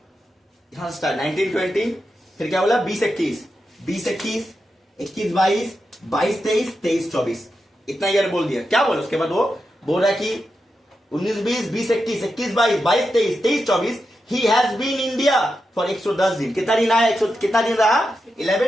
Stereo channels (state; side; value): normal; both; correlation 0.88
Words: यहां स्टार्ट 1920। फिर क्या बोला? 20-21, 20-21, 21-22, 22-23, 23-24, इतना ईयर बोल दिया। क्या बोला उसके बाद? वो बोल रहा है कि 19-20, 20-21, 21-22, 22-23, 23-24 he has been India for 110 दिन। कितना दिन आया? कितना दिन रहा?